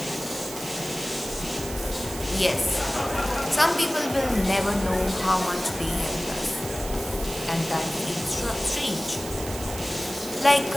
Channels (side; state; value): right; noise; hiss, 11 dB below the sound